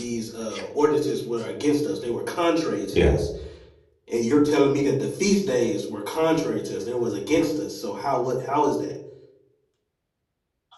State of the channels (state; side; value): identical; both; correlation 1.00